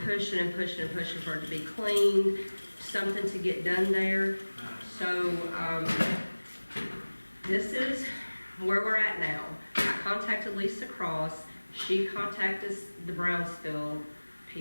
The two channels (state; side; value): inverted; both; correlation -1.00